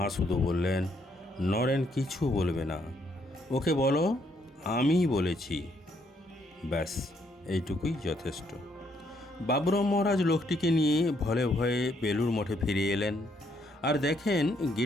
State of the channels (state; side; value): normal; both; correlation 0.71